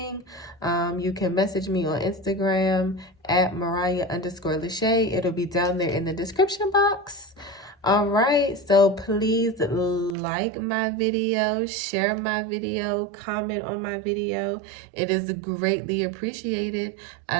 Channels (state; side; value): drops out; left; at 10.2 s